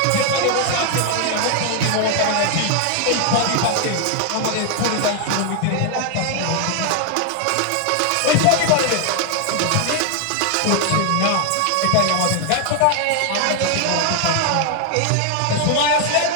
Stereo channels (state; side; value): different; both; correlation 0.00